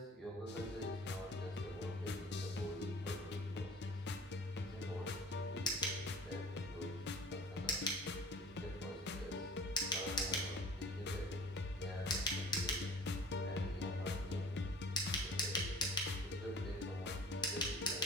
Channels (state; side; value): normal; both; correlation 0.45